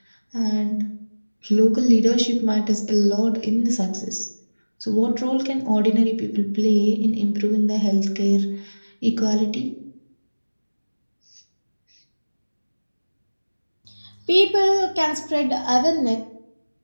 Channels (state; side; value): inverted; both; correlation -1.00